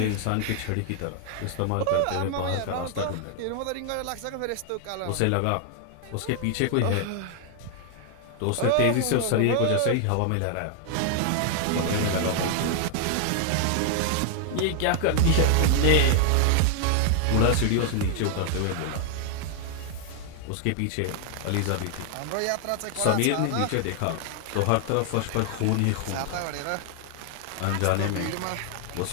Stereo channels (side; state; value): both; different; correlation 0.00